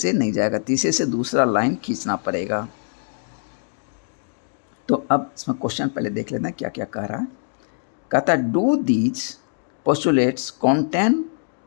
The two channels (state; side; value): silent; right; digital silence